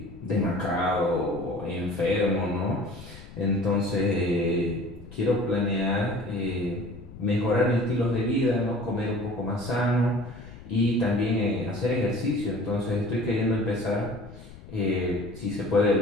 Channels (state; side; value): noise; left; rumble, 17 dB below the sound